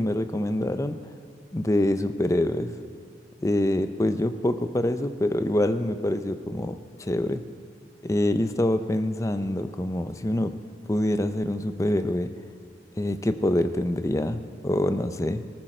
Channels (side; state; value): both; normal; correlation 0.88